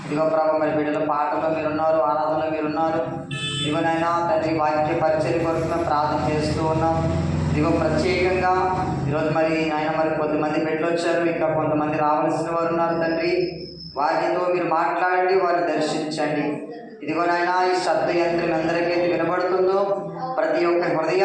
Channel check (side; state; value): both; identical; correlation 1.00